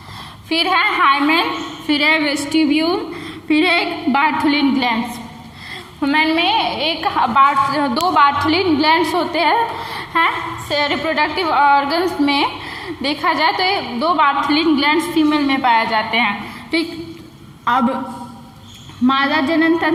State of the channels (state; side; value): identical; both; correlation 1.00